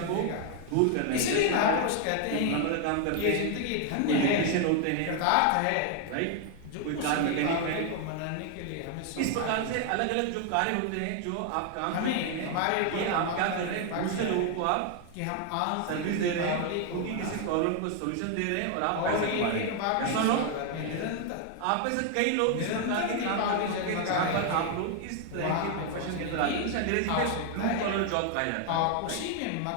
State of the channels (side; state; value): both; different; correlation 0.00